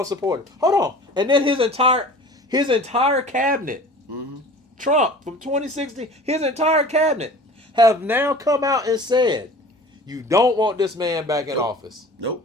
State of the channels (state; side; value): normal; both; correlation 0.42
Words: support him. Hold on. And then His entire cabinet, Trump from 2016, his entire cabinet have now come out and said, you don't want this man back in office. Nope.